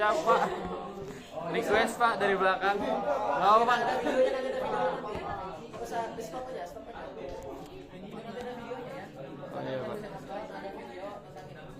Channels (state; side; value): identical; both; correlation 1.00